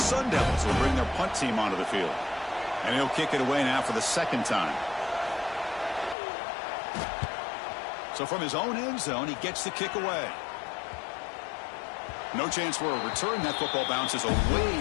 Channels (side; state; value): right; drops out; at 6.2 s